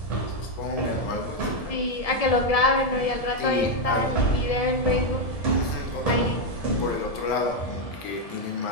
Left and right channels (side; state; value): right; late; 1.7 ms